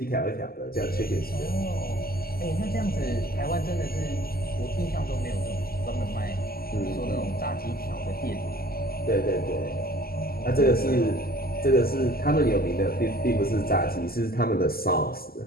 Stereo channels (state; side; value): late; right; 0.44 ms